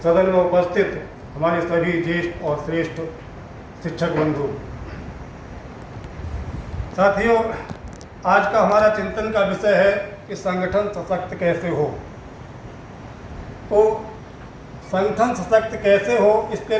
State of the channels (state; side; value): identical; both; correlation 1.00